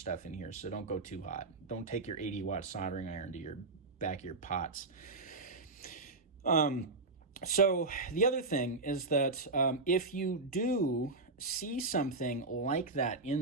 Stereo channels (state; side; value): quieter; left; 3.5 dB